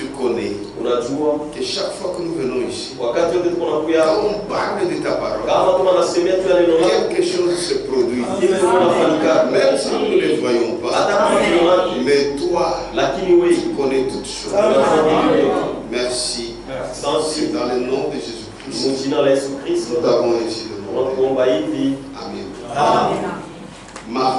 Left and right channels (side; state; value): both; identical; correlation 1.00